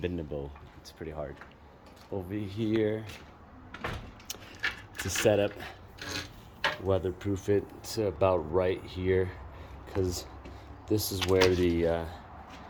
it's pretty hard. Over here to set up, weatherproof it to about right here, because this is where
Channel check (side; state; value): both; identical; correlation 1.00